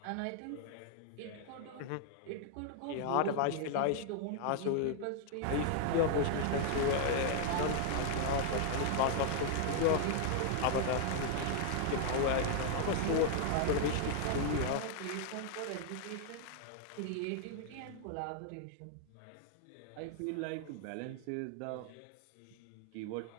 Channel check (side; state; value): both; different; correlation -0.01